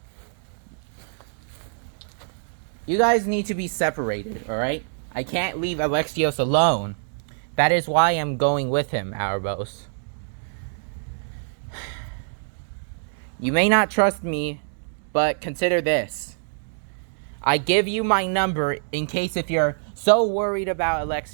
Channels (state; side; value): silent; left; digital silence